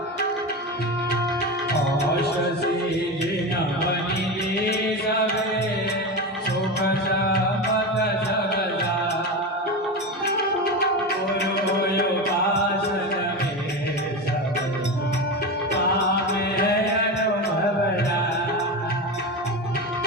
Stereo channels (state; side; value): normal; both; correlation 0.21